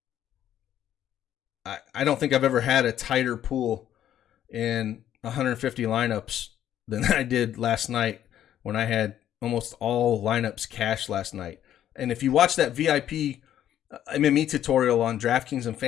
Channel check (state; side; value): quieter; right; 11.2 dB